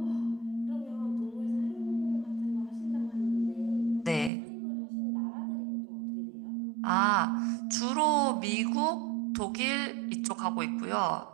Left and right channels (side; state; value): left; drops out; at 4.3 s